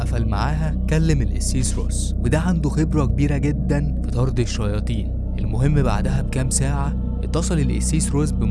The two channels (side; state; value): both; identical; correlation 1.00